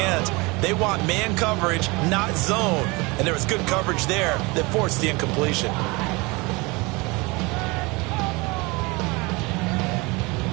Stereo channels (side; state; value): left; quieter; 25.5 dB